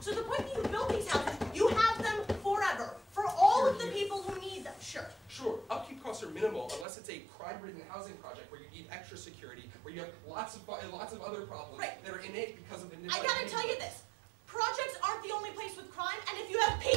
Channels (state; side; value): drops out; left; at 6.9 s